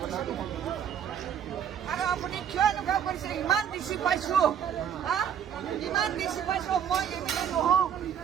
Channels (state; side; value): quieter; left; 8.8 dB